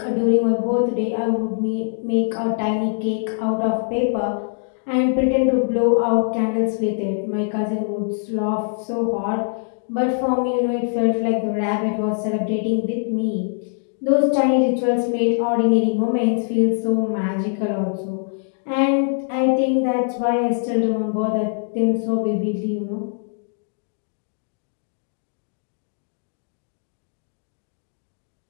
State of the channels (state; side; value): silent; right; digital silence